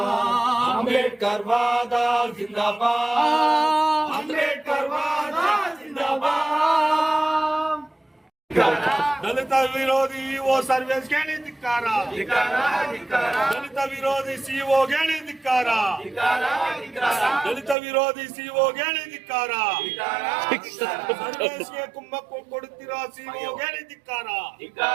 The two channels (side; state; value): left; drops out; at 17.8 s